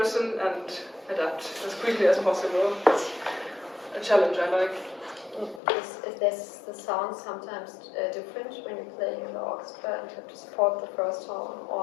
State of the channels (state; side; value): drops out; right; at 5.6 s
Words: and adapt as quickly as possible. It's a challenge I like. Is the sound sometimes different when you're playing in the orchestra and you have to support the first horn,